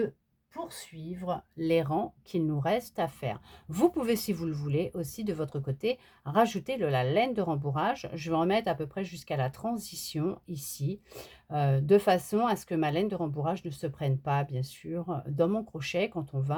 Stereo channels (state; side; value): identical; both; correlation 1.00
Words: poursuivre les rangs qu'il nous reste à faire. Vous pouvez, si vous le voulez, aussi de votre côté, rajouter de la laine de rembourrage. Je vais en mettre à peu près jusqu'à la transition ici, de façon à ce que ma laine de rembourrage ne se prenne pas, bien sûr, dans mon crochet quand on